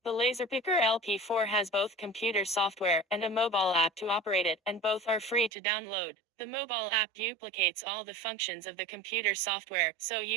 The Laser Picker LP4 has both computer software and a mobile app to operate it, and both are free to download. The mobile app duplicates all the functions of the computer software, so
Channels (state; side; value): drops out; left; at 5.5 s